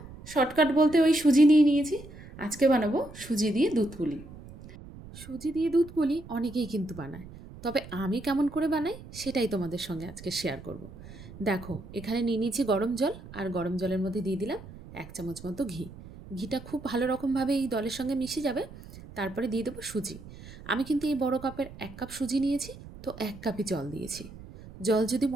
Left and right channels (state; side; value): noise; right; rumble, 16 dB below the sound